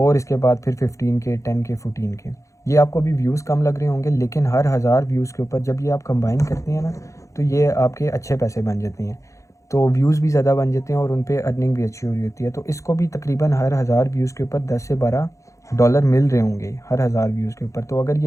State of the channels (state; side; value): late; right; 0.15 ms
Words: इसके बाद फिर 15 के, 10 के, 14 के। ये आपको अभी व्यूज़ कम लग रहे होंगे, लेकिन हर 1000 व्यूज़ के ऊपर जब ये आप कंबाइन करते हैं ना तो ये आपके अच्छे पैसे बन जाते हैं। तो व्यूज़ भी ज़्यादा बन जाते हैं और उन पे अर्निंग भी अच्छी हो रही होती है। तो इसको भी तकरीबन हर 1000 व्यूज़ के ऊपर 10 से 12 डॉलर मिल रहे होंगे हर 1000 व्यूज़ के ऊपर। तो अगर